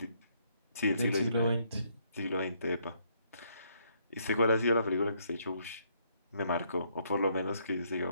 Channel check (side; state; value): both; inverted; correlation -0.71